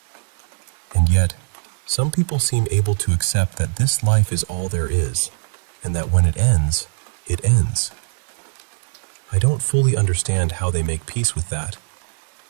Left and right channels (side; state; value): left; silent; 65 dB below the other